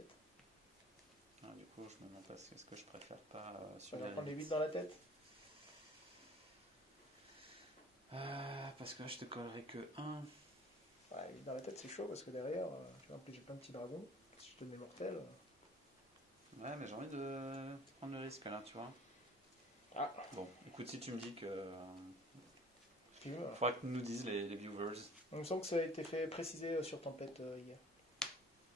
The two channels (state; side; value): normal; both; correlation 0.50